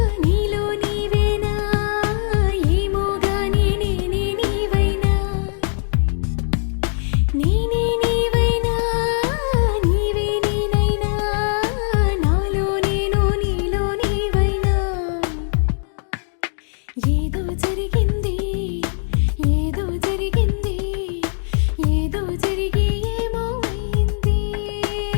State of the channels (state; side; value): silent; right; digital silence